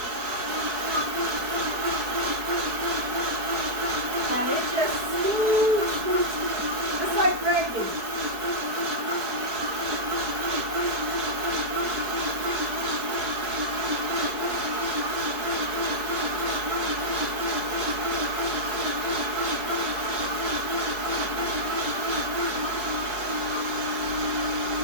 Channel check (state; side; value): late; left; 4.7 ms